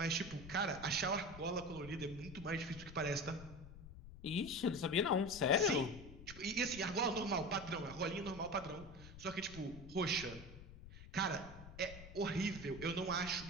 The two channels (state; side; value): noise; left; rumble, 15 dB below the sound